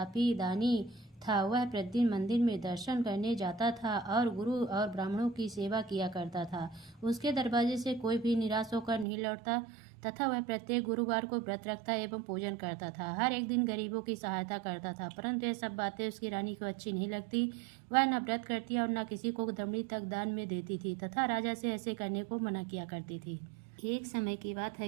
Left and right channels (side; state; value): left; drops out; at 9.1 s